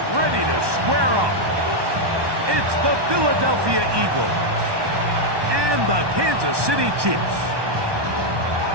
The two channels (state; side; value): late; left; 1.2 ms